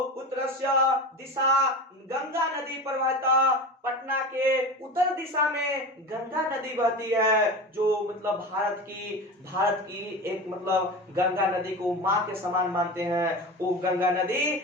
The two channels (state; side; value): normal; both; correlation 0.29